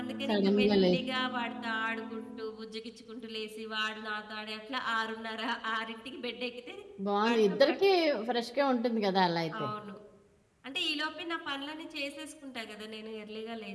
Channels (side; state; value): both; identical; correlation 1.00